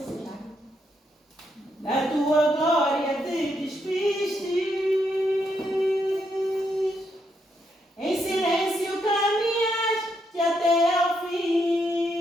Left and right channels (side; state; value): both; normal; correlation 0.78